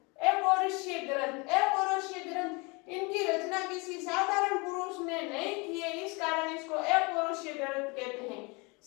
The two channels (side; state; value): right; quieter; 28.5 dB